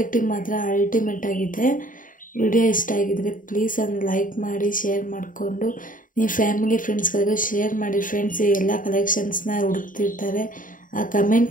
ಮಾತ್ರ ಅಲ್ಟಿಮೇಟ್ ಆಗಿದೆ. ವಿಡಿಯೋ ಇಷ್ಟ ಆಗಿದ್ದರೆ ಪ್ಲೀಸ್ ಒಂದು ಲೈಕ್ ಮಾಡಿ, ಶೇರ್ ಮಾಡಿಕೊಂಡು ನೀವು ಫ್ಯಾಮಿಲಿ ಫ್ರೆಂಡ್ಸ್ಗಳಿಗೂ ಶೇರ್ ಮಾಡಿ ಫ್ರೆಂಡ್ಸ್. ಈ ಎಲ್ಲ ಕಲೆಕ್ಷನ್ಸ್ನ ಹುಡುಕ್ತಿರ್ತಾರೆ.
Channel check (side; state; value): right; late; 0.39 ms